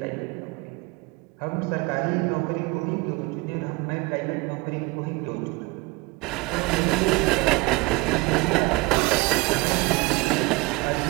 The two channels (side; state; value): left; quieter; 23.9 dB